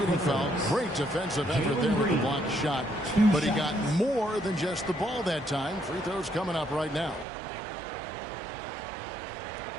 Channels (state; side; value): drops out; left; at 7.2 s